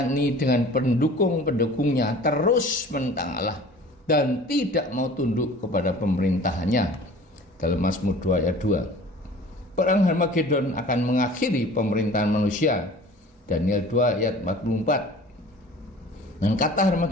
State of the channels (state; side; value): normal; both; correlation 0.45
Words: ini dengan pendukung-pendukungnya terus menentang Allah dan tidak mau tunduk kepada pemerintahannya. Dalam Mazmur 2 ayat 2. Perang Harmagedon akan mengakhiri pemerintahan manusia. Daniel 2 ayat 44. Dan kata